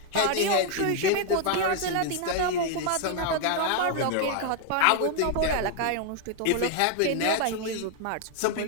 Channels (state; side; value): different; both; correlation 0.00